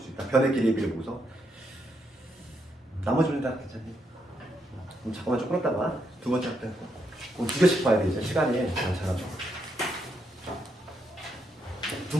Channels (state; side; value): normal; both; correlation 0.79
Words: 수 있다. 변의 길이비를 보고서 나머지는 다 괜찮니? 그럼 잠깐만 좀 끌었다가 두 번째 학대 그럼 두 개씩 봐야 돼. 이제 시간이 많잖아.